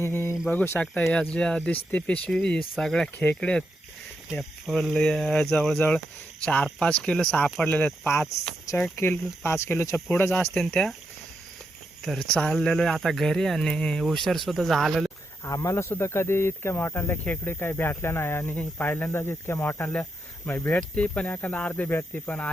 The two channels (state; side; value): normal; both; correlation 0.84